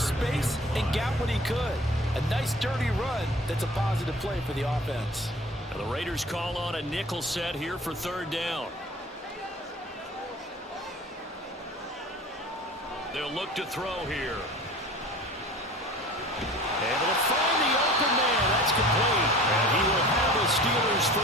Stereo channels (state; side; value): normal; both; correlation 0.43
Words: space and got what he could. A nice dirty run that's a positive play for the offense. Now the Raiders call on a nickel set here for 3rd down. They'll look to throw here. Able to find the open man. That's complete. And he will have a Steelers